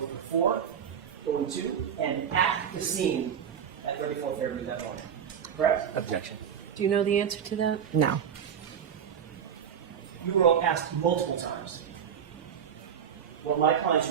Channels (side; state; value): left; quieter; 8.0 dB